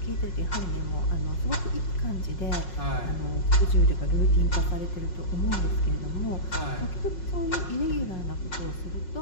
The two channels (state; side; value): late; right; 5.5 ms